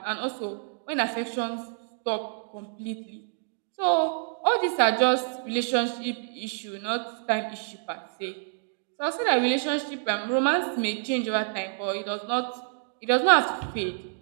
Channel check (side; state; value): left; silent; digital silence